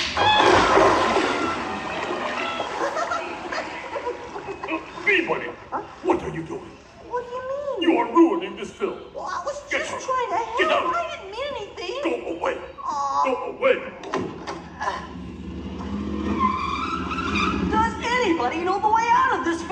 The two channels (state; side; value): identical; both; correlation 1.00